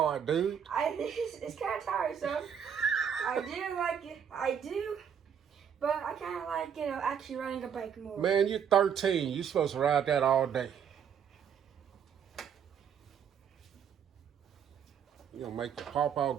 dude? It's kind of tiresome. I do like it. I do. But I kind of like, actually riding a bike more. Man, you're 13. You're supposed to ride that all day. You gonna make your pawpaw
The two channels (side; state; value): left; quieter; 7.9 dB